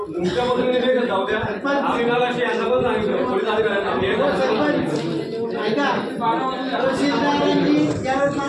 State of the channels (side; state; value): both; identical; correlation 1.00